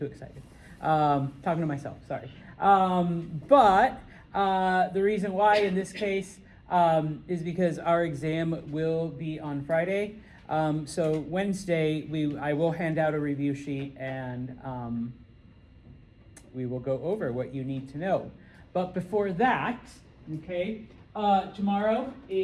excited. Talking to myself, sorry. But the reason why in this case is because our exam will be on Friday. So Wednesday, I will hand out a review sheet and we will go over what you need to know. But before that, okay, tomorrow,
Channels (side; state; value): both; identical; correlation 1.00